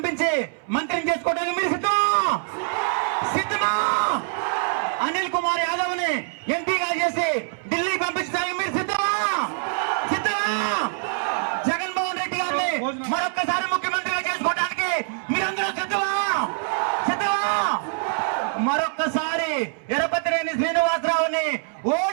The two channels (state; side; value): silent; left; 62 dB below the other